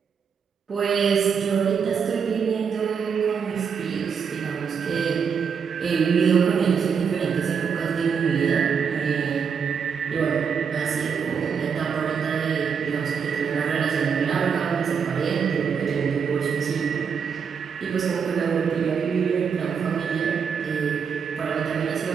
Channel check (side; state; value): left; quieter; 6.6 dB